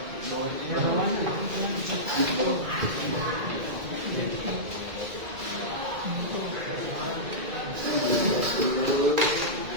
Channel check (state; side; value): late; left; 2.1 ms